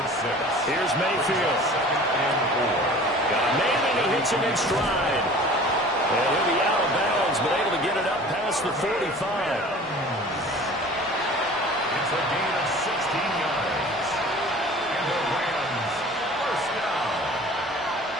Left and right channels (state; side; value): normal; both; correlation 0.44